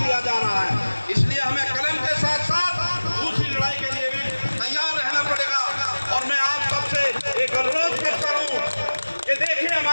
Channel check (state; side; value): inverted; both; correlation -1.00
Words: जा रहा है, इसलिए हमें कलम के साथ साथ दूसरी लड़ाई के लिए भी तैयार रहना पड़ेगा। और मैं आप सबसे एक अनुरोध करता हूँ कि देखिए,